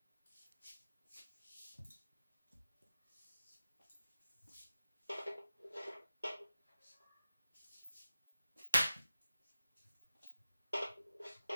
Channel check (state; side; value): inverted; both; correlation -0.94